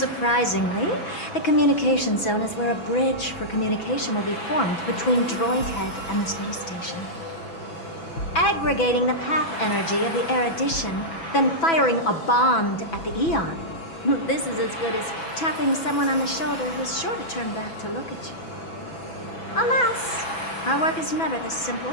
the communication zone is where a bridge for communication will be formed between Droidhead and the space station. Aggregating the path energy of the erudition, then firing a bond at the Eon. This is as good as tapping someone on the shoulder who's sure to turn back to look at you. Alas, our work is never this simple.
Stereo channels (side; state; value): right; late; 6.0 ms